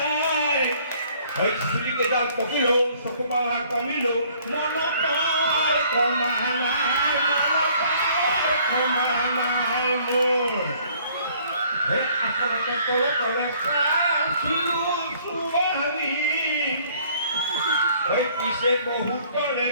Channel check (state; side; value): inverted; both; correlation -0.59